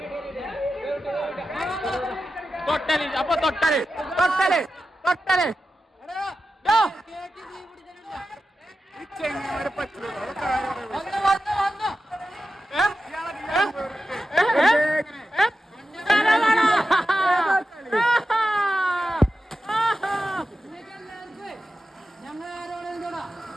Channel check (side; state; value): both; normal; correlation 0.92